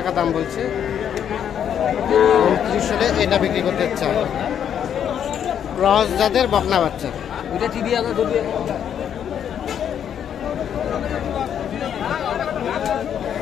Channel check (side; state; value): right; quieter; 9.0 dB